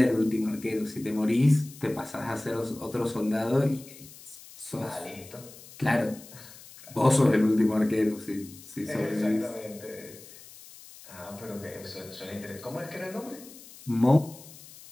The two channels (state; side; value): noise; left; hiss, 19 dB below the sound